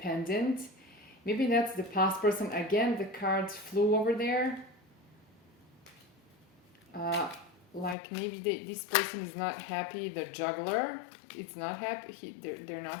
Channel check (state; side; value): drops out; right; at 8.0 s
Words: Maybe that's the past person. Again, the cards flew over there. Like maybe this person is not happy. The juggler is not happy. They're not